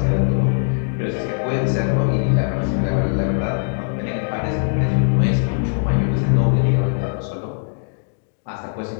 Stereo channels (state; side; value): silent; right; digital silence